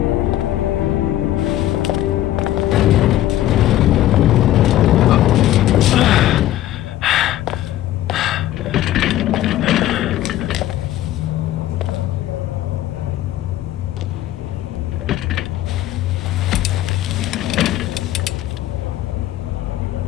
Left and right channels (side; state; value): right; quieter; 13.7 dB